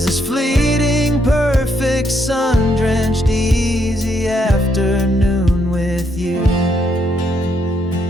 this fleeting, perfect, sun-drenched, easy afternoon with you.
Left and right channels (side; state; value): both; normal; correlation 0.75